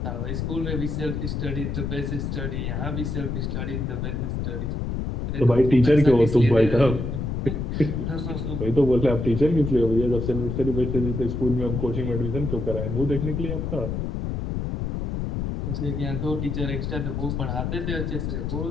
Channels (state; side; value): noise; left; rumble, 2 dB below the sound